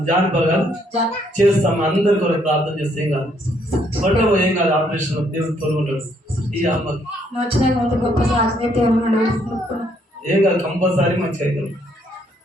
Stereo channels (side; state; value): both; normal; correlation 0.70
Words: జానపరగా చేస్తాం, అందరి కొరకు ప్రార్థన చేస్తే ఏం కాదు, పట్టబో ఏం కాదు, ఆపరేషన్ దేవుడు తోడుకుంటాడు. ఈ అమ్మకి ఏం కాదు, కంపల్సరీ మంచిగా అవుతాం.